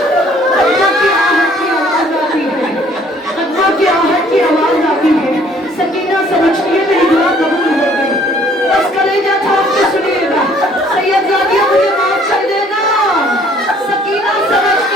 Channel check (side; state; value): both; normal; correlation 0.59